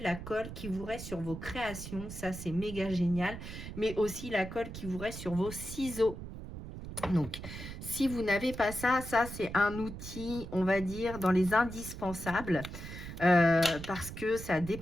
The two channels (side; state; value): right; noise; rumble, 10 dB below the sound